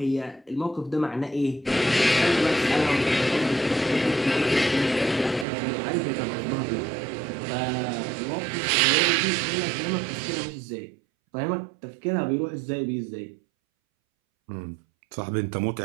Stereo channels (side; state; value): left; drops out; at 5.5 s